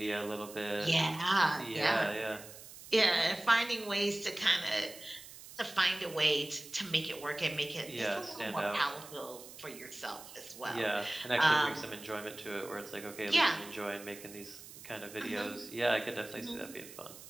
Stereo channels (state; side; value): noise; right; hiss, 16 dB below the sound